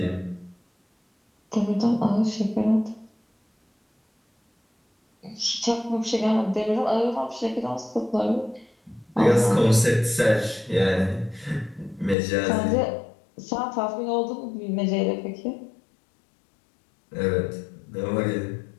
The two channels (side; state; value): right; drops out; at 12.2 s